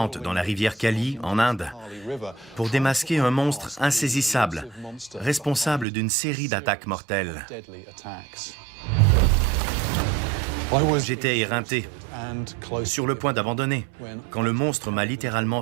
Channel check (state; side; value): drops out; left; at 5.9 s